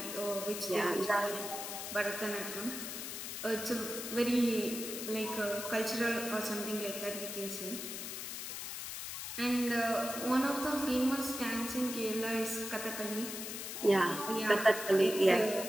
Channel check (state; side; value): noise; left; hiss, 6 dB below the sound